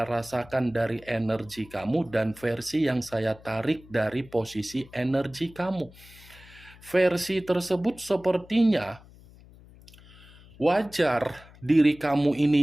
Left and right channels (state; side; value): noise; left; hum, 23 dB below the sound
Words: rasakan dari energi kamu dan versi yang saya tarik dari posisi energi kamu. Versi tersebut sepertinya wajar diri kamu